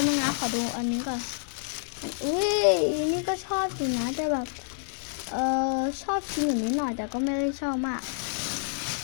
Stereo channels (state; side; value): silent; right; 59 dB below the other